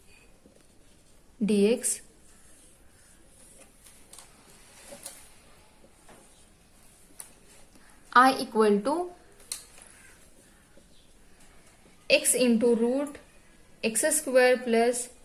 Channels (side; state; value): both; identical; correlation 1.00